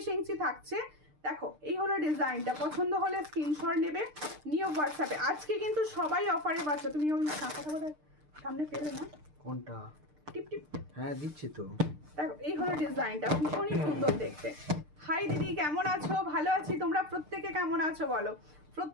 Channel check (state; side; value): late; left; 6.6 ms